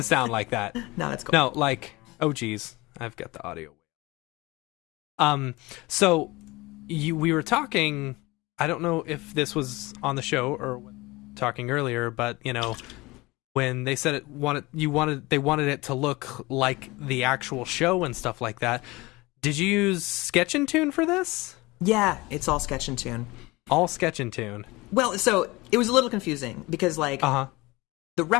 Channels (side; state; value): right; quieter; 22.2 dB